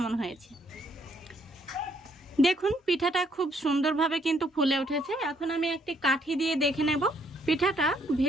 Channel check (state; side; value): normal; both; correlation 0.69